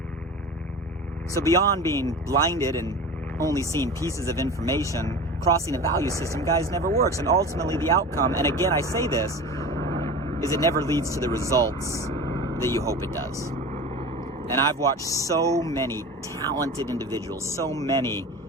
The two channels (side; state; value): both; normal; correlation 0.33